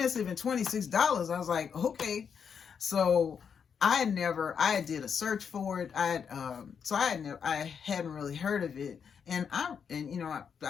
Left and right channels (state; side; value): quieter; right; 6.9 dB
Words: and $26, I was like, okay. So I did a search for it. I hadn't really heard of it, and I